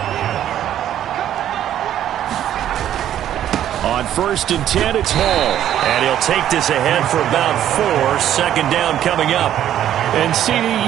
On 1st and 10, it's Hall. And he'll take this ahead for about 4. 2nd down coming up. And, CD,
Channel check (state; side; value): quieter; left; 11.2 dB